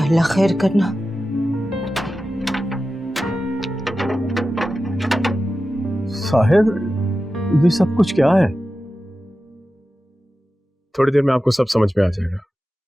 अल्लाह खैर करना। साहिर, ये सब कुछ क्या है? थोड़ी देर में आपको सब समझ में आ जाएगा।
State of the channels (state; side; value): normal; both; correlation 0.93